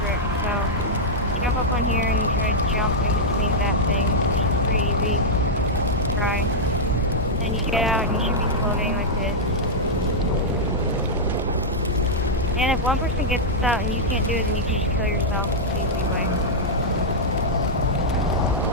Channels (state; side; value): normal; both; correlation -0.06